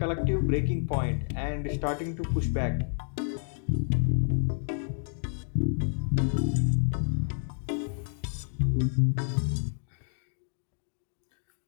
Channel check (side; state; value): right; silent; digital silence